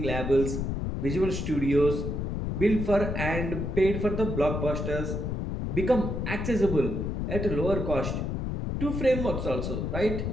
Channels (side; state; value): left; noise; rumble, 2 dB below the sound